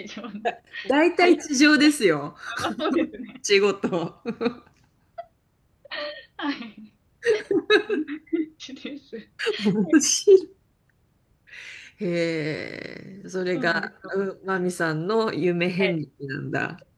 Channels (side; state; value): both; identical; correlation 1.00